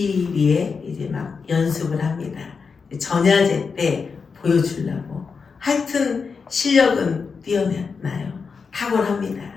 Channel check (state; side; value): quieter; right; 5.3 dB